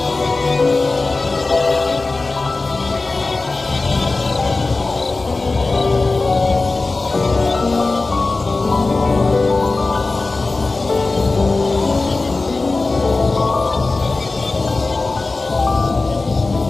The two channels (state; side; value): quieter; right; 3.5 dB